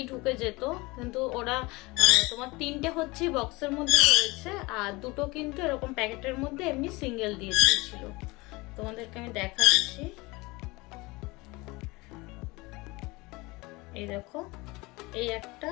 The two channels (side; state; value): right; quieter; 22.9 dB